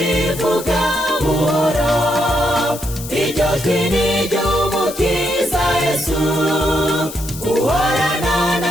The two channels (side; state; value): left; noise; hiss, 12 dB below the sound